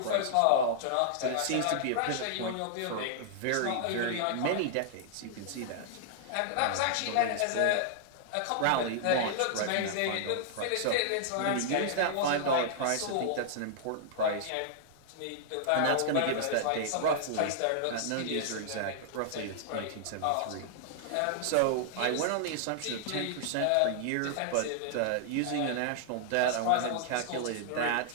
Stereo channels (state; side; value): different; both; correlation -0.01